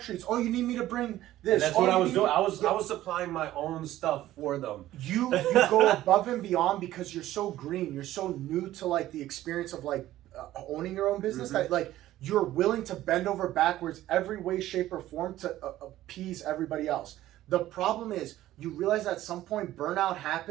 Oh, you need me to bring this. And that's what I was doing. I was supplying my own stuff for them. You go above and beyond because you're so green. You're so new to like the experience of like owning your own business that like you're willing to bend over backwards every way, shape, or form to appease everybody else. The problem is you realize at some point burnout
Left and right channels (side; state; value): left; quieter; 14.4 dB